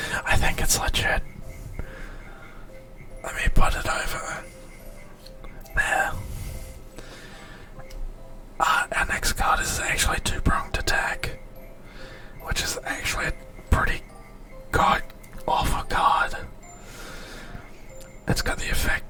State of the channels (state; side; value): identical; both; correlation 1.00